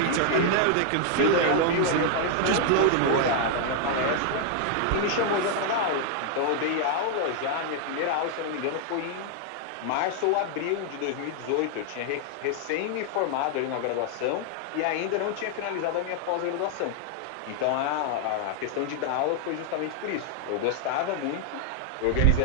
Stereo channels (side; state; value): both; different; correlation 0.00